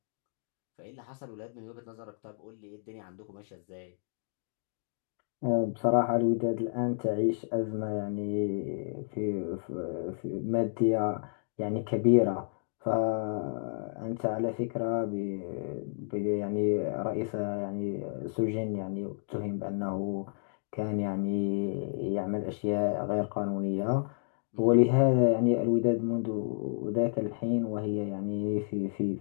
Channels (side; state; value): right; silent; digital silence